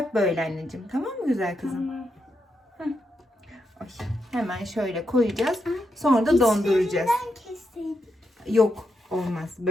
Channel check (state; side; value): normal; both; correlation 0.83